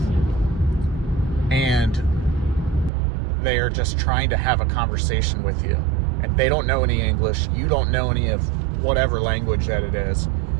and they are just trying to have a conversation with you, and they don't know any English, you don't know any of whatever language that it is.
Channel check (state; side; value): drops out; left; at 2.9 s